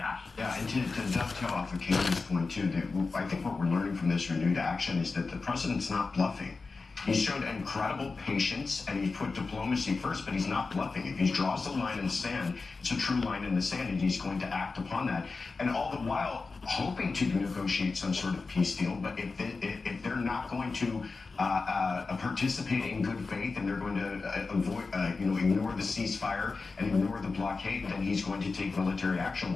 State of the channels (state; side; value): quieter; right; 4.1 dB